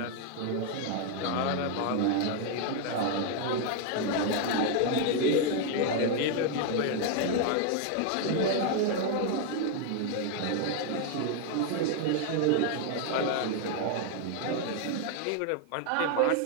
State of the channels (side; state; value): both; different; correlation 0.01